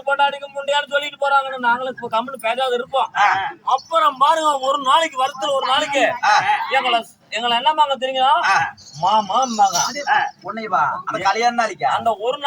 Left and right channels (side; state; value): both; identical; correlation 1.00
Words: பொண்டாடிக்கு முண்டியான்னு சொல்லிட்டு போறாங்கன்னு நாங்களும் இப்ப கம்முன்னு பேசாத இருப்போம். அப்புறம் பாருங்க, ஒரு நாளைக்கு வருஷத்துல ஒரு நாளைக்கு எங்களை என்னமாங்க தெரியுங்களா, மாமாம்பாங்க. கல்யாண நாளைக்கு அந்த ஒரு